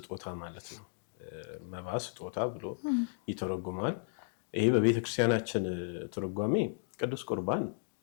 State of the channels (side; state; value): right; silent; digital silence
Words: ማለት ነው። መባ ስጦታ ብሎ ይተረጉማል። ይሄ በቤተክርስቲያናችን ትርጓሜ ቅዱስ ቁርባን